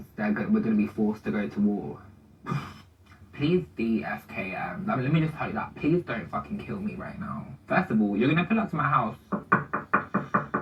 we're going to be forced to go to war. Please DFKM. Let me just tell you that. Please don't fucking kill me right now. First of all, you're going to pull up to my house.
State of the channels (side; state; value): both; identical; correlation 1.00